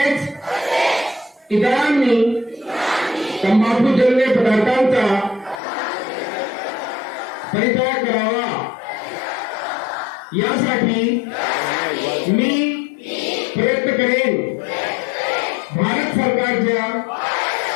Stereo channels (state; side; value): drops out; right; at 5.6 s